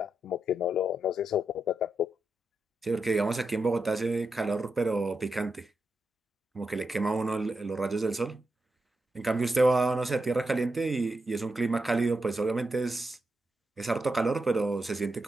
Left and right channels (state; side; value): normal; both; correlation 0.86